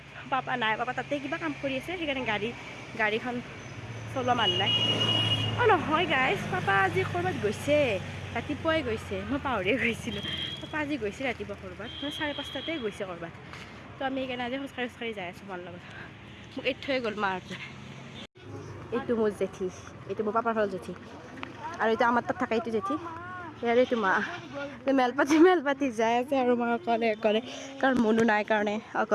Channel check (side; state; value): both; identical; correlation 1.00